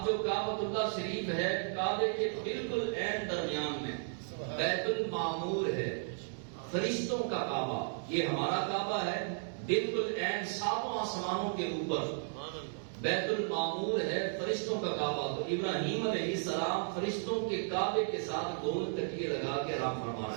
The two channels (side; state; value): left; silent; digital silence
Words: جو کعبۃ اللہ شریف ہے، کعبے کے بالکل عین درمیان میں بیت المعمور ہے، فرشتوں کا کعبہ، یہ ہمارا کعبہ ہے، بالکل عین 7 آسمانوں کے اوپر بیت المعمور ہے، فرشتوں کا کعبہ۔ تو ابراہیم علیہ السلام فرشتوں کے کعبے کے ساتھ 2 تکیے لگا کے آرام فرما